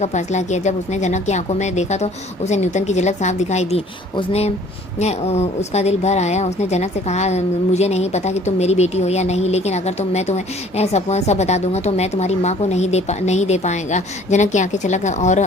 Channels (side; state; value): both; normal; correlation 0.53